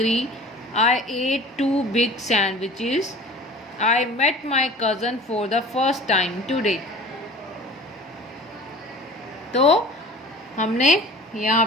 I ate 2 big sandwiches, I met my cousin for the first time today। तो हमने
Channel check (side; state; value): both; normal; correlation 0.42